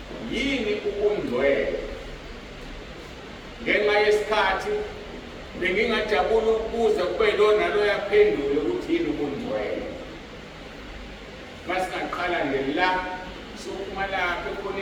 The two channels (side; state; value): both; identical; correlation 1.00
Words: yini ubungcwele? Ngenxa yesikhathi bengingajabula ukubuza kube lona lo yaphendula ukuthi yini ubungcwele. Masingaqala nje la sokuphuma lapha